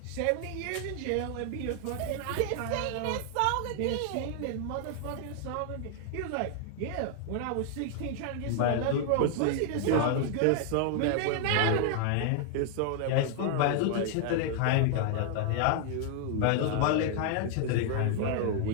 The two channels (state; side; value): different; both; correlation 0.00